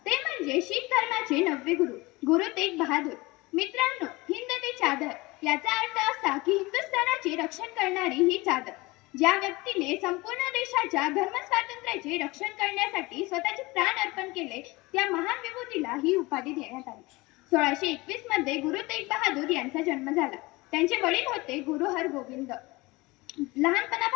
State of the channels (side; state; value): right; quieter; 22.4 dB